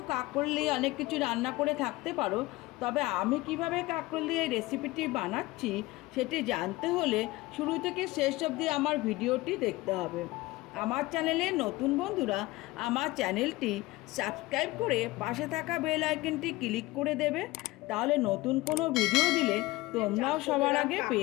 কাঁকরোল দিয়ে অনেক কিছু রান্না করে থাকতে পারো, তবে আমি কিভাবে কাঁকরোল দিয়ে এই রেসিপিটি বানাচ্ছি সেটি জানতে হলে শুরু থেকে শেষ অবধি আমার ভিডিওটি দেখতে হবে। আমার চ্যানেলে নতুন বন্ধুরা আমার চ্যানেলটি সাবস্ক্রাইব করে পাশে থাকা বেল আইকনটি ক্লিক করে দেবে, তাহলে নতুন কোনো ভিডিও দিলে তোমরাও সবার আগে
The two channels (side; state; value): right; quieter; 20.1 dB